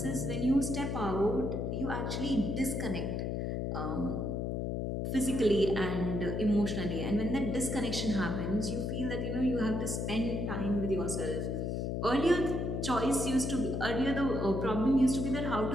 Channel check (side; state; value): left; noise; hum, 1 dB below the sound